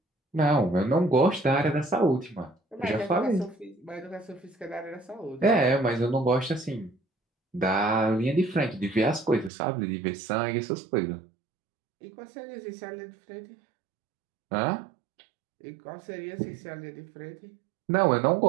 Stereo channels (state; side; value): drops out; left; at 9.5 s